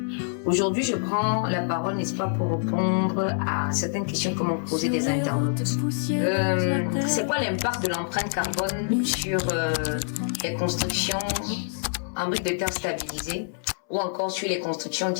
Aujourd'hui, je prends la parole, n'est-ce pas, pour répondre à certaines questions que m'ont posées des internautes. C'est quoi l'impact de l'empreinte carbone sur les constructions en briques de terre stabilisées ou encore sur les constructions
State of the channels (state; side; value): silent; right; 61 dB below the other